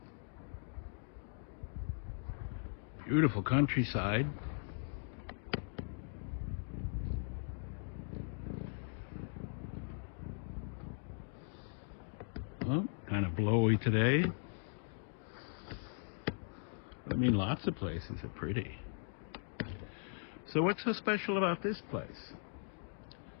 Beautiful countryside. Well, kind of blowy today. I mean, lots of places are pretty. So what's so special about this place?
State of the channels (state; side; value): silent; right; digital silence